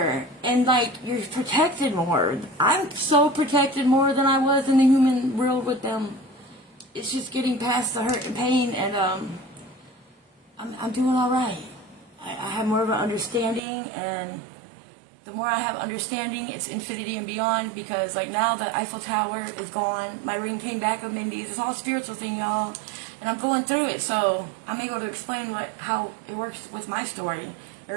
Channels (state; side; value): drops out; left; at 13.6 s